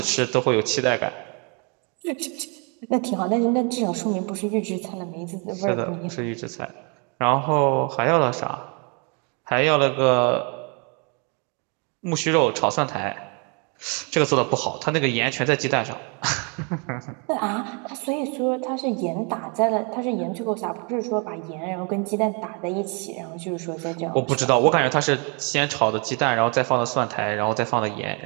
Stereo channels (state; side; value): quieter; left; 35.1 dB